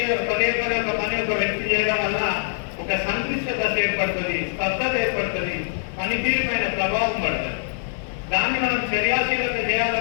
పని ఒక వ్యక్తి చేయడం వల్ల ఒక సంక్లిష్ట దశ ఏర్పడుతుంది, స్తబ్దత ఏర్పడుతుంది, పనితీరు పైన ప్రభావం పడుతుంది. దాన్ని మనం చర్యాశీలత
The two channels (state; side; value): silent; right; 59 dB below the other